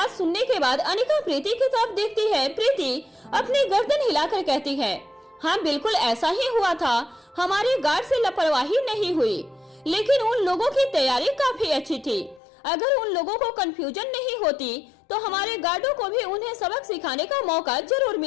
सुनने के बाद अनिका प्रीति की तरफ देखती है। प्रीति अपनी गर्दन हिलाकर कहती है, हाँ बिल्कुल ऐसा ही हुआ था। हमारे गार्ड से लापरवाही नहीं हुई, लेकिन उन लोगों की तैयारी काफी अच्छी थी। अगर उन लोगों को कंफ्यूजन नहीं होती तो हमारे गार्डों को भी उन्हें सबक सिखाने का मौका जरूर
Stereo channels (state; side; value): drops out; right; at 12.4 s